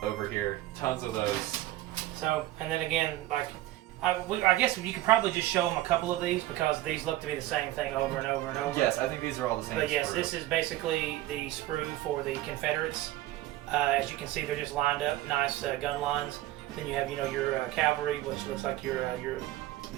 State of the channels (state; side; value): quieter; left; 15.6 dB